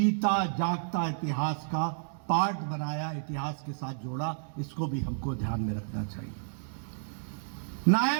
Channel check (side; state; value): left; silent; digital silence